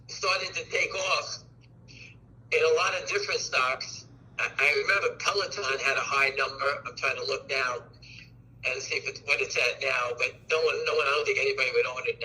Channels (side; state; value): both; identical; correlation 1.00